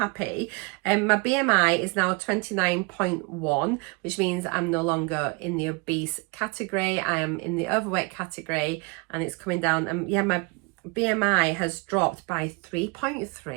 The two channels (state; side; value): quieter; left; 29.8 dB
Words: My BMI is now 29.1, which means I'm no longer in the obese category. I am in the overweight category, and it's coming down. And yeah, my BMI has dropped by